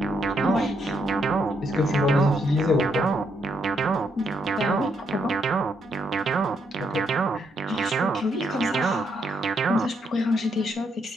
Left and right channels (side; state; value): both; normal; correlation 0.76